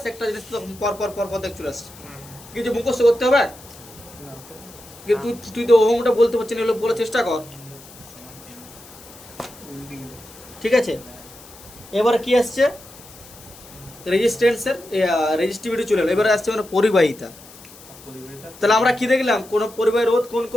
একটা জিনিস তো পর পর পর পর দেখ চলে আসছে। কিছু মুখস্থ করতে হবে। কিন্তু তুই তো ওহমটা বলতে পারছিস না, এগুলো বলার চেষ্টা কর। ঠিক আছে? এবারে কি আসছে? রেজিস্ট্যান্সের রেজিস্টিভিটি চলে এলো। এবারে আসছে মানে পরিবাহিতা। তাহলে আমরা কি দেখলাম? কোন পরিবাহী রোধ কোন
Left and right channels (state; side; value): noise; left; hiss, 20 dB below the sound